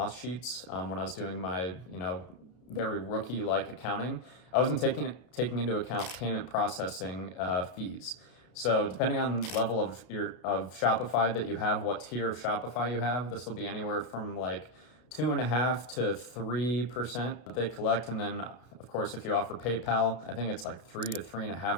sheets, when I was doing my, very rookie-like accounting, I wasn't taking into account payment processing fees. So depending on the level of Shopify that you have, what tier of Shopify you have, this will be anywhere from like 2.5% to 3% that they collect. And then of course, if you offer PayPal, I think it's like 3 to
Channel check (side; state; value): right; late; 32 ms